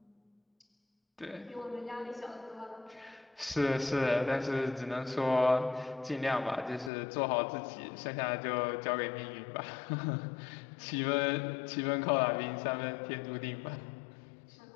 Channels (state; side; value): drops out; right; at 6.9 s